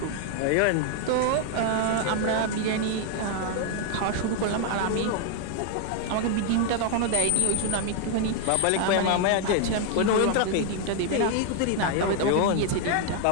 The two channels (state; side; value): different; both; correlation 0.00